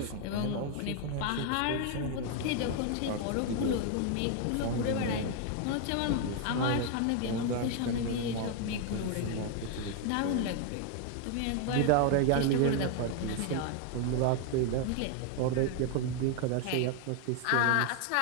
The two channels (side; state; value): both; different; correlation 0.00